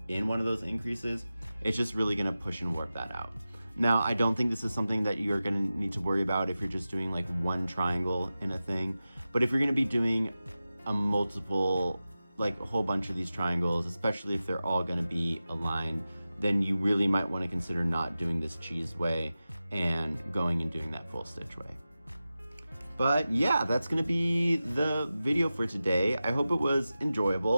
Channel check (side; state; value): both; inverted; correlation -0.94